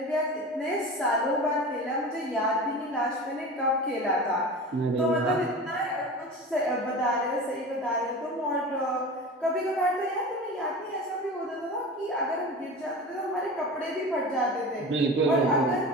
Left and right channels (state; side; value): normal; both; correlation 0.32